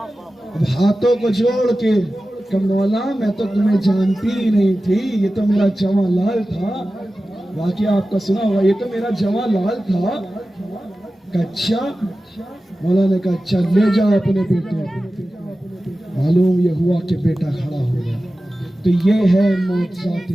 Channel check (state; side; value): normal; both; correlation 0.95